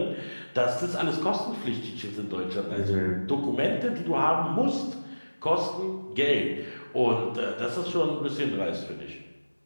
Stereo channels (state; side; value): inverted; both; correlation -1.00